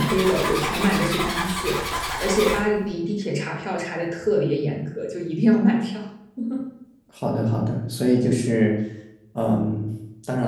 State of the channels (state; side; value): identical; both; correlation 1.00